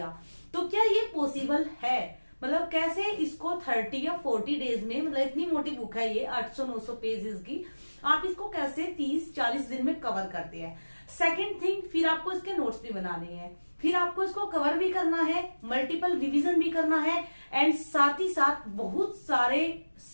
तो क्या ये पॉसिबल है? मतलब कैसे इसको 30 या 40 डेज में, मतलब इतनी मोटी बुक है ये 800-900 पेजेस की, आप इसको कैसे 30-40 दिन में कवर करते हैं? सेकंड थिंग, फिर आपको इसके नोट्स भी बनाने हैं, फिर आपको इसको कवर भी करना है, मल्टीपल रिवीजन भी करना है, एंड साथ ही साथ बहुत सारे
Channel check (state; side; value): inverted; both; correlation -1.00